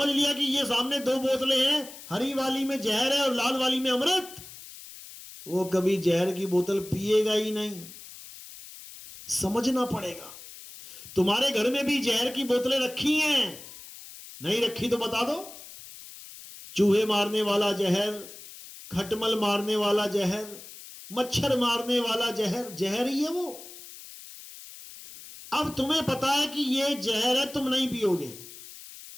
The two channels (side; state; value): left; noise; hiss, 16 dB below the sound